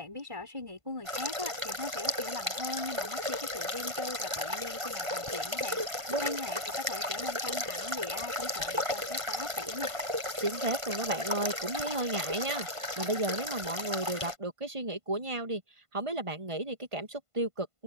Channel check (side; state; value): left; late; 1.5 ms